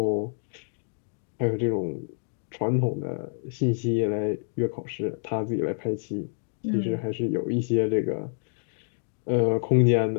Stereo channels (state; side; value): silent; right; digital silence